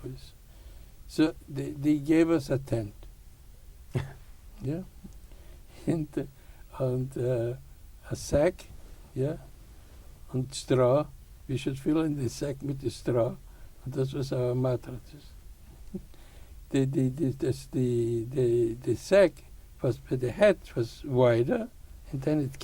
boys. So they gave us a tent. Yeah. And a sack, yeah, and straw. We should fill in the sack with the straw. And this was our mattresses. The sack was, the head was wider, and then it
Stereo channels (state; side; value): identical; both; correlation 1.00